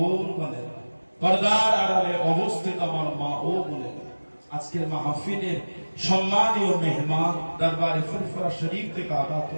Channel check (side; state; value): both; inverted; correlation -1.00